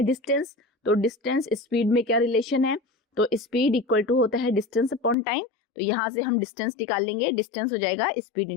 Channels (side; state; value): right; drops out; at 5.2 s